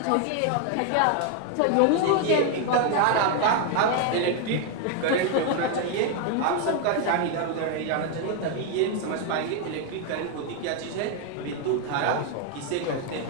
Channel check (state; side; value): different; both; correlation 0.00